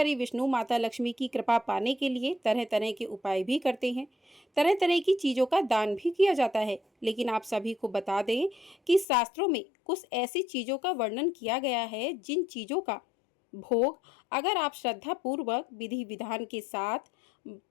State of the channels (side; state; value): right; drops out; at 9.1 s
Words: विष्णु, माता लक्ष्मी की कृपा पाने के लिए तरह तरह के उपाय भी करते हैं। तरह तरह की चीज़ों का दान भी किया जाता है। लेकिन आप सभी को बता दें कि शास्त्रों में कुछ ऐसी चीज़ों का वर्णन किया गया है जिन चीज़ों का भोग अगर आप श्रद्धा पूर्वक विधि विधान के साथ